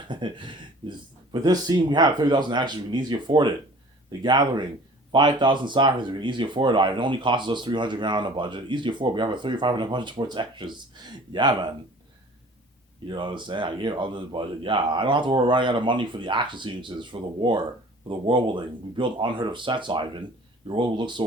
But this scene, we have 30,000 actors, we can easily afford it. The Gathering, 5,000 sacrifices. We can easily afford it. It only costs us 300 grand on a budget. Easy afford. We have a 3,500 budget towards extras. Yeah, man. You know what I'm saying? I gave all this budget. Yeah, I don't have to worry running out of money for the action sequences, for the war, for the world building. We built unheard of sets, Ivan. Your world will look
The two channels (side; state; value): both; normal; correlation 0.47